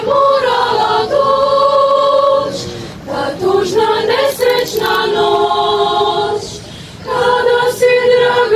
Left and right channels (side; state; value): both; identical; correlation 1.00